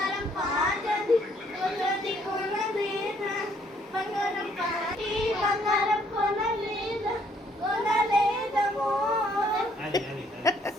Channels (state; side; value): normal; both; correlation 0.65